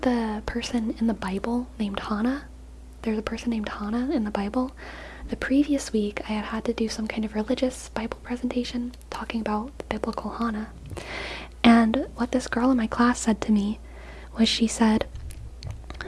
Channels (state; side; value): identical; both; correlation 1.00